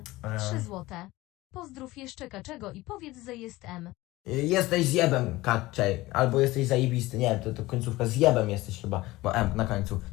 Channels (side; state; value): right; quieter; 19.0 dB